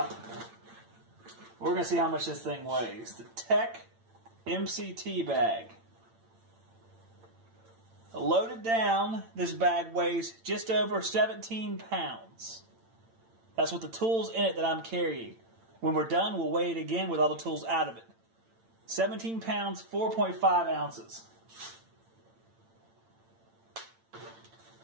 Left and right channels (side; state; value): left; late; 8.9 ms